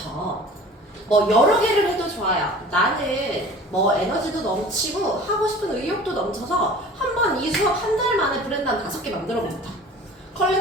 뭐 여러 개를 해도 좋아요. 나는 뭐 에너지도 넘치고 하고 싶은 의욕도 넘쳐서 한번 이 수업 한 달 만에 브랜드 한 5개 만들어 본다.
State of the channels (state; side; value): normal; both; correlation 0.43